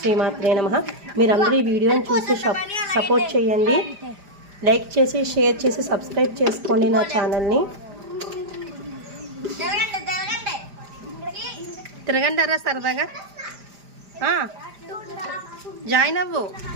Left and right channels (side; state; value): left; late; 5.0 ms